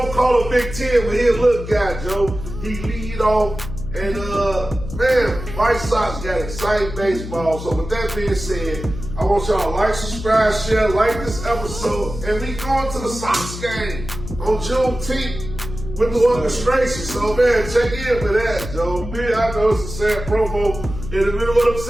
calling Big Ten with his little guy, Joe. He lead off. And man, White Sox got exciting baseball. So with that being said, I want y'all to like, subscribe, share, like this episode, and we going to the Sox game on Juneteenth with the orchestration. So man, check in for that, Joe. Man, I know it's a sad promo in the middle of what I'm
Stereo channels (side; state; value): left; noise; hum, 9 dB below the sound